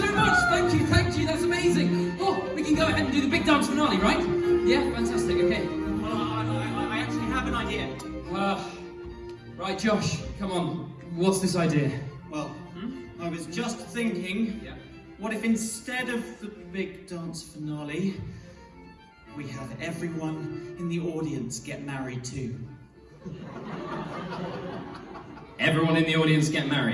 much! Thank you, that's amazing! Oh, we can go ahead and do the big dance finale, right? Yeah, fantastic, okay. Well, I actually have an idea. Right, Josh, come on. What's this idea? Well, I was just thinking, Yeah. what if instead of the big dance finale, we have everyone in the audience get married too? Everyone in the audience get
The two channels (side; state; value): both; identical; correlation 1.00